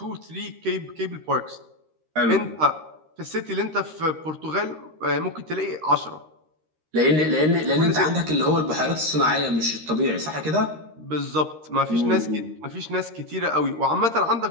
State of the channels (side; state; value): left; late; 13 ms